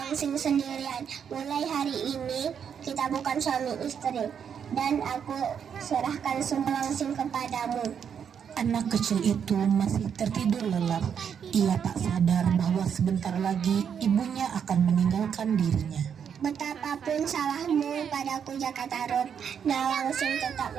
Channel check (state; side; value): quieter; left; 7.7 dB